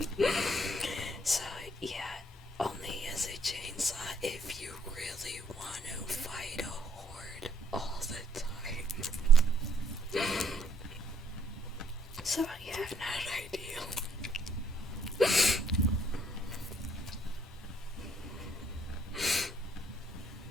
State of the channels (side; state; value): both; normal; correlation 0.67